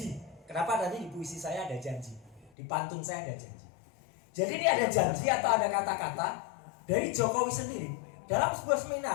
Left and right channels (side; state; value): right; drops out; at 2.5 s